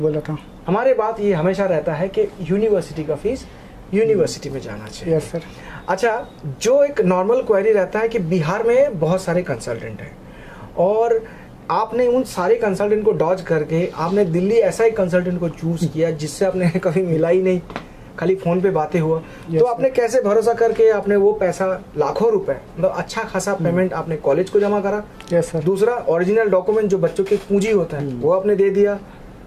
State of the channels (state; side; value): identical; both; correlation 1.00